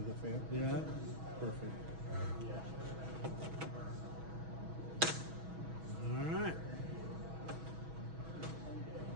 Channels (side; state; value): left; late; 6.2 ms